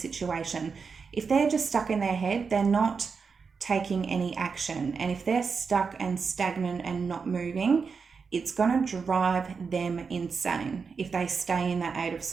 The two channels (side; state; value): left; quieter; 5.4 dB